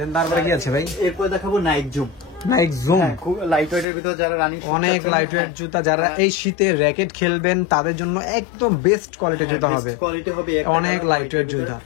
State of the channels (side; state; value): right; drops out; at 3.9 s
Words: তারপরে কি আছে ভাই? এরপর দেখাবো নাইক জুম। নাইক জুম খুব লাইট ওয়েটের ভিতর, যারা রানিং অনেক লাইট ওয়েট জুতা, যারা এই শীতে র্যাকেট খেলবেন তাদের জন্য একদম বেস্ট কোয়ালিটির জুতা হবে। কোয়ালিটি হবে অনেক লাইট ওয়েট জুতা।